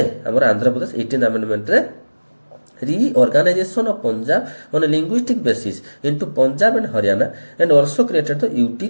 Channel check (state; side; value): inverted; both; correlation -1.00